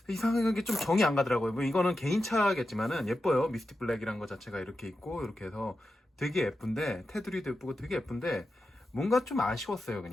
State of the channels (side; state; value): both; normal; correlation 0.90